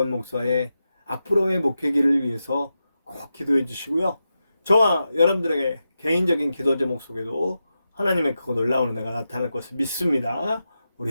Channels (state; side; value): inverted; both; correlation -0.89